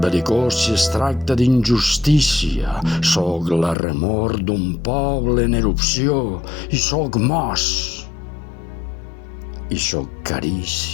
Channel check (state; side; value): drops out; right; at 3.8 s